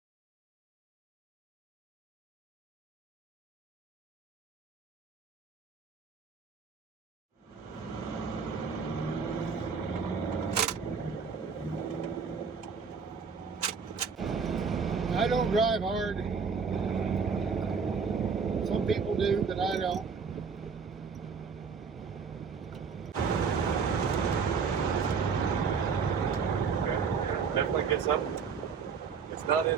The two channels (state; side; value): quieter; left; 5.7 dB